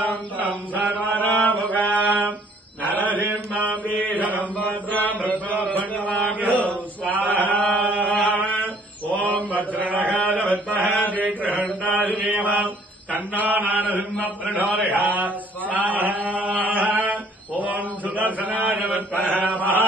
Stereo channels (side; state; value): both; normal; correlation 0.59